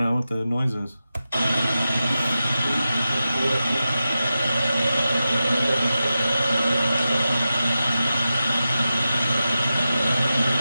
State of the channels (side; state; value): both; inverted; correlation -0.92